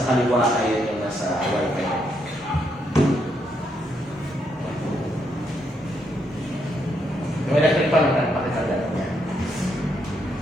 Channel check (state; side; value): normal; both; correlation 0.77